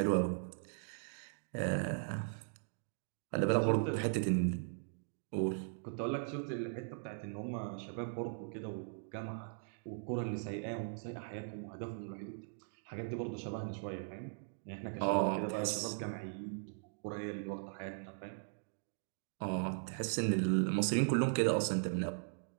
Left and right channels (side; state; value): left; silent; digital silence